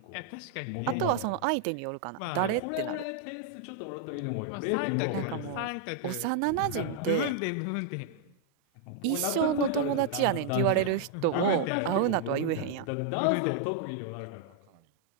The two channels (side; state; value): both; different; correlation -0.01